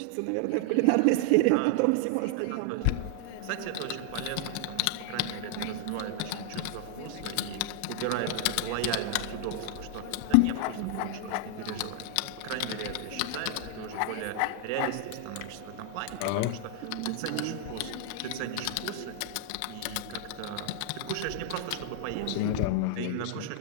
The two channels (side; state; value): both; different; correlation 0.00